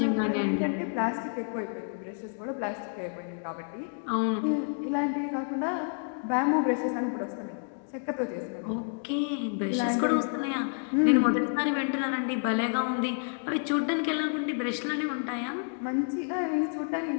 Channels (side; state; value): right; silent; 58 dB below the other